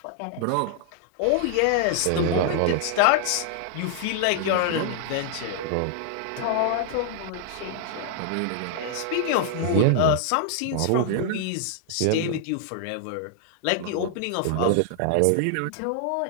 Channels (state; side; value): different; both; correlation -0.01